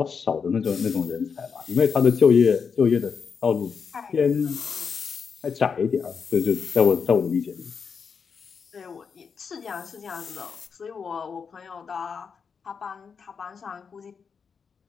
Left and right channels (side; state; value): right; quieter; 6.0 dB